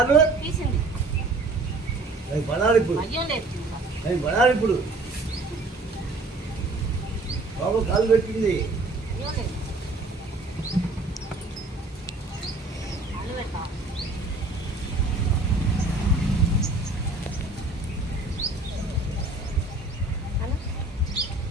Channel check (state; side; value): quieter; left; 3.1 dB